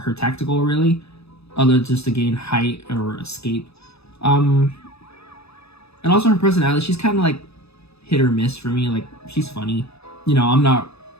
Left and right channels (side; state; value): right; late; 0.79 ms